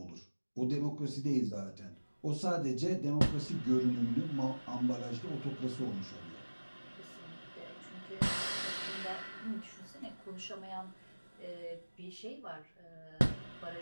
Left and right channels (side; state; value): both; inverted; correlation -1.00